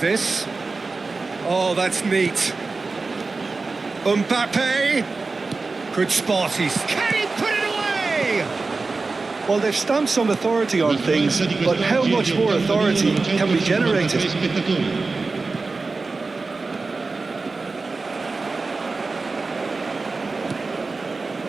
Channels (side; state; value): left; quieter; 3.9 dB